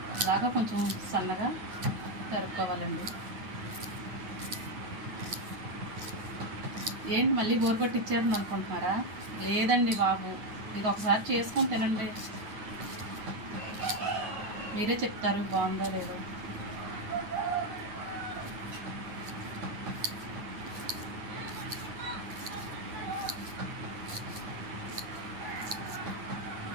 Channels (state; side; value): late; left; 9.3 ms